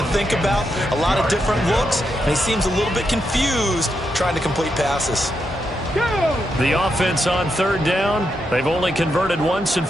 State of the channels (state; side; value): normal; both; correlation 0.83